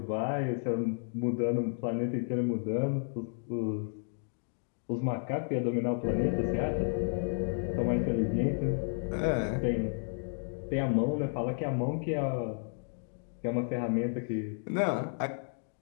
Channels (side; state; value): right; silent; digital silence